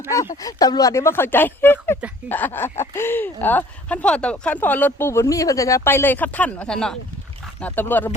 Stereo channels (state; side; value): normal; both; correlation 0.54